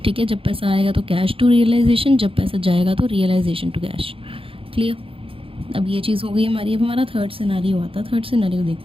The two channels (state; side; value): late; left; 0.26 ms